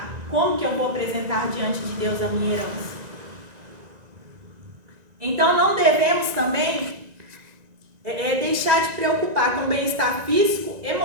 como que eu vou apresentar diante de Deus a minha herança? Então, não devemos também deixar de preocupar com o bem-estar físico,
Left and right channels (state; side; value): late; left; 1.9 ms